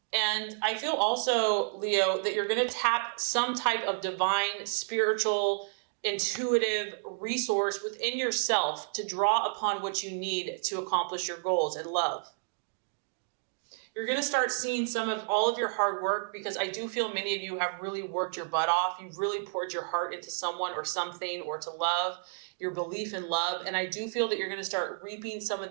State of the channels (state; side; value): silent; left; digital silence